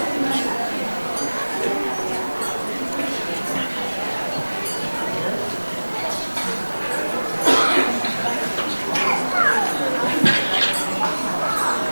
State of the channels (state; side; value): inverted; both; correlation -1.00